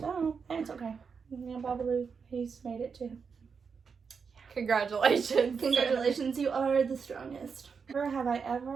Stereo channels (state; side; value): quieter; left; 5.8 dB